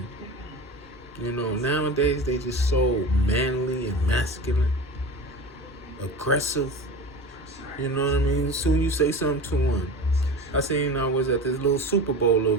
Nowadays they just so manly and masculine, aggressive. You know what I mean? As soon as you say something to one. I seen I was at this little Super Bowl little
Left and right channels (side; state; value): both; normal; correlation 0.32